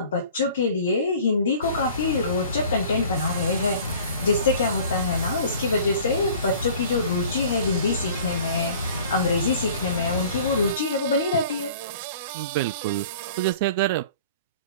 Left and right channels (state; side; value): inverted; both; correlation -0.47